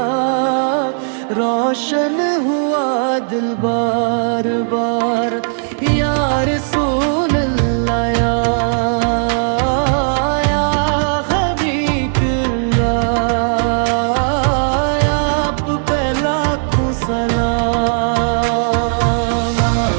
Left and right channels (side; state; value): left; silent; digital silence